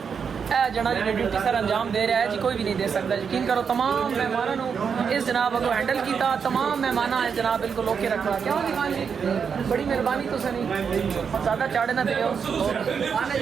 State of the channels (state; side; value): quieter; left; 6.5 dB